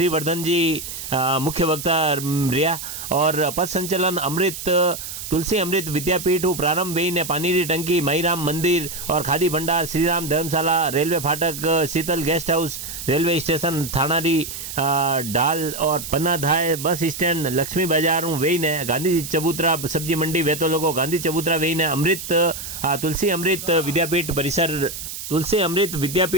जी मुख्य वक्ता रिया और पथ संचलन अमृत तुलसी अमृत विद्यापीठ प्रारंभ वही ने पानी की टंकी मईराम मंदिर और खादी भंडार श्रीराम धर्मशाला रेलवे फाटक शीतल गेस्ट हाउस रेलवे स्टेशन थानारी डाल और पन्नाधाय बस स्टैंड लक्ष्मी बाजार वही ने गांधी चबूतरा सब्जी मंडी वेतो लोगो गांधी चबूतरा वही ने अमृत तुलसी अमृत विद्यापीठ परिसर तुलसी अमृत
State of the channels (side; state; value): right; noise; hiss, 8 dB below the sound